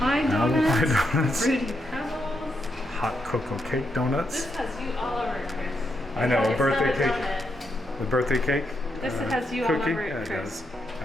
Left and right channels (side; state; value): both; normal; correlation 0.81